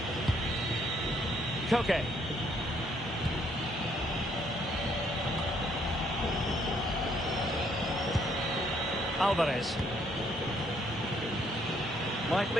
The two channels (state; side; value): normal; both; correlation 0.68